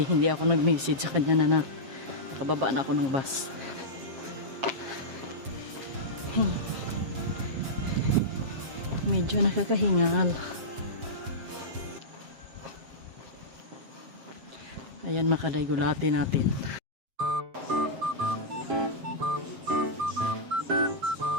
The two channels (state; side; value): late; left; 7.5 ms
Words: Hindi ako nag-message sa kanya na nakababa na ako ng bus. Medyo nakakahingal. Ayan makaday, gulati natin.